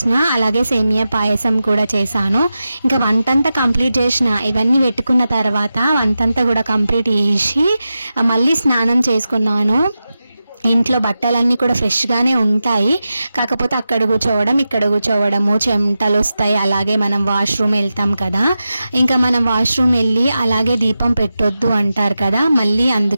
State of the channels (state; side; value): inverted; both; correlation -0.92